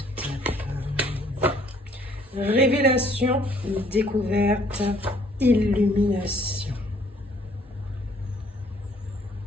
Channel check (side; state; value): both; normal; correlation 0.61